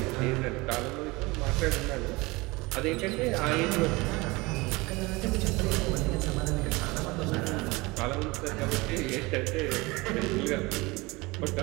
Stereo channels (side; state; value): left; quieter; 23.4 dB